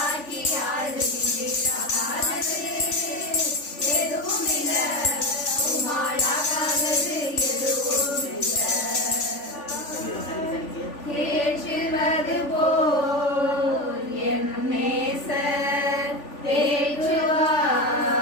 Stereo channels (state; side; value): late; right; 3.4 ms